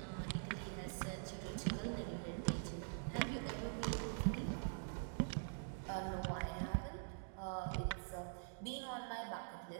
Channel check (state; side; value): silent; left; digital silence